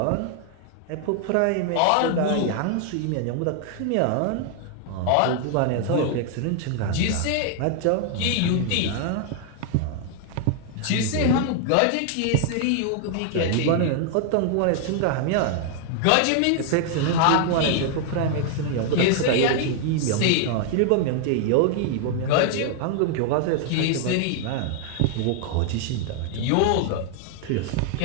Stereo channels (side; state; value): both; different; correlation 0.00